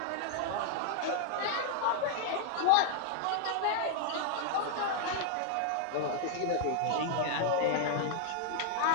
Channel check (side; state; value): both; different; correlation 0.00